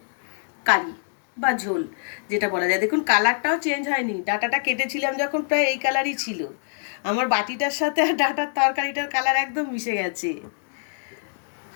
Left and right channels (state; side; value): silent; right; digital silence